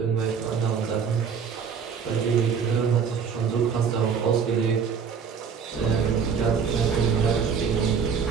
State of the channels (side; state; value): left; quieter; 6.5 dB